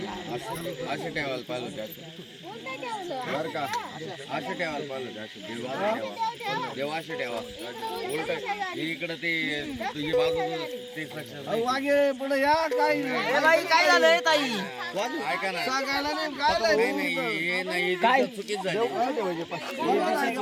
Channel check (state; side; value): identical; both; correlation 1.00